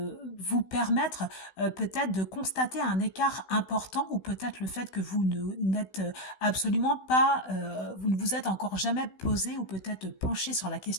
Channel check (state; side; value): late; right; 16 ms